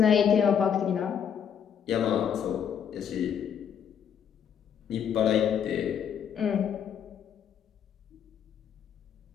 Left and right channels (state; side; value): quieter; right; 8.2 dB